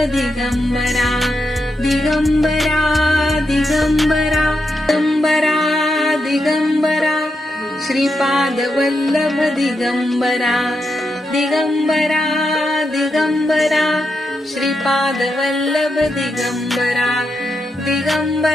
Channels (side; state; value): both; normal; correlation 0.85